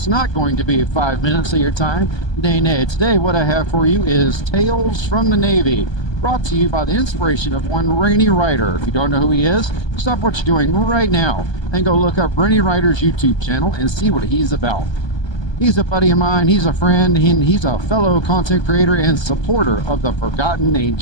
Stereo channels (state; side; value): late; right; 1.2 ms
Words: not going to be 5 minutes of your time. Nay. Today, what I have for you is Tales from the Navy, brought to you by the inspiration of one Rainy Rider. If you don't know who he is, stop what you're doing right now and go look up Rainy Rider's YouTube channel and see what he's about. He's a buddy of mine, he's a friend, and he's a fellow content creator and supporter of the Forgotten